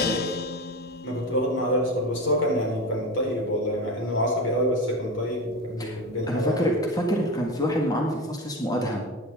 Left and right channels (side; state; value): both; normal; correlation 0.24